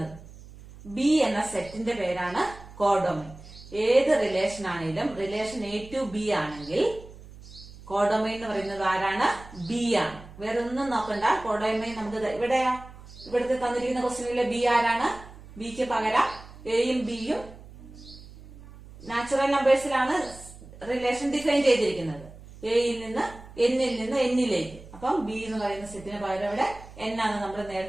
ബി എന്ന സെറ്റിന്റെ പേരാണ് കോഡൊമൈൻ. ഏത് റിലേഷൻ ആണെങ്കിലും റിലേഷൻ A to B ആണെങ്കിൽ കോഡൊമൈൻ എന്ന് പറയുന്നത് ആരാണ്? ബി ആണ്. വേറെ ഒന്നും നോക്കണ്ട. കോഡൊമൈൻ നമുക്ക് ഇവിടുത്തെ തന്നിരിക്കുന്ന ക്വസ്റ്റ്യനിലെ ബി ആരാണ്? ബിക്ക് പകരം എയും ബിയും നാച്ചുറൽ നമ്പേഴ്സിലാണ് റിലേഷൻ ഡിഫൈൻ ചെയ്തിരിക്കുന്നത്. എയിൽ നിന്ന് എന്നിൽ നിന്ന് എന്നിലേക്ക്. അപ്പം ബി എന്ന് പറയുന്ന സെറ്റിന് പകരം ഇവിടെ എൻ ആണ് നമ്മൾ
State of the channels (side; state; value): right; noise; hum, 18 dB below the sound